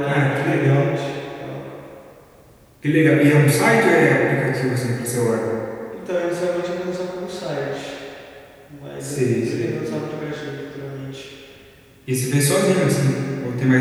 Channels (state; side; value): identical; both; correlation 1.00